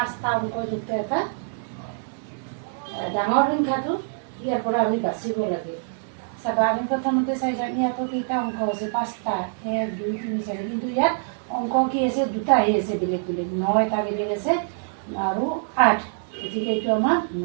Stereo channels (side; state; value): left; silent; digital silence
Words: অংকযুক্ত এটা ডাঙৰ সংখ্যাটো ইয়াৰ পৰা আমি বাচিব লাগে। চাবা, আমি প্ৰথমতে চাই যাম ইয়াতো কেইটা অংক আছে, 5টা, 1 2 3 4, কিন্তু ইয়াত অংক কি আছে, দুটাহে আছে বেলেগ বেলেগ, 9 এটা বেলেগ আছে আৰু 8, গতিকে এইটো আমাৰ